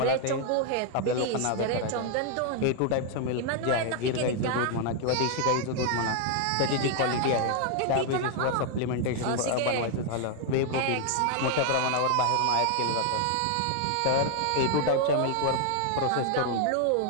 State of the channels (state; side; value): different; both; correlation 0.00